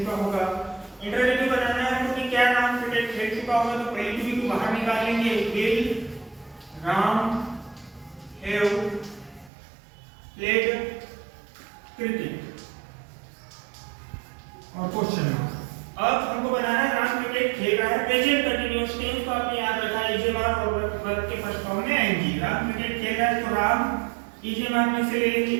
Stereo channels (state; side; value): drops out; left; at 9.5 s